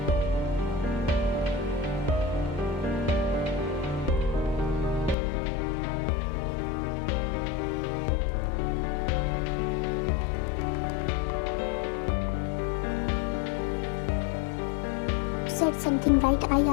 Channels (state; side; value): drops out; right; at 5.2 s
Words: said something right? I